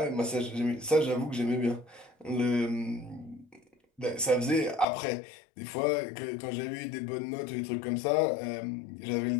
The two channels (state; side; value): drops out; right; at 4.9 s